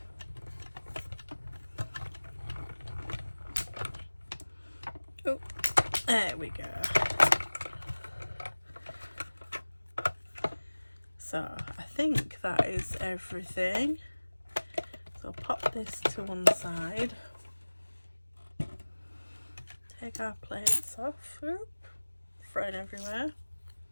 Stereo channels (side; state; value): both; inverted; correlation -1.00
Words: Oh, there we go. So I think that is everything. So pop this to one side. Take our plates off. Oop, thrown everywhere.